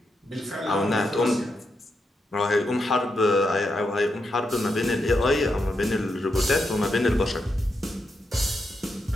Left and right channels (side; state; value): both; normal; correlation 0.84